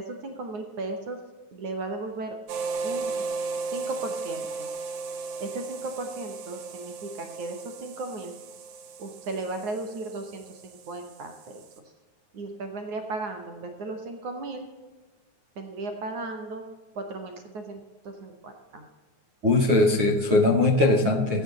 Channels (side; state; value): left; late; 9.4 ms